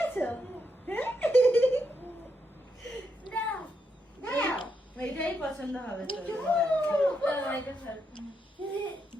এটাই পছন্দ হবে তো।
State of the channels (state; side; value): normal; both; correlation 0.81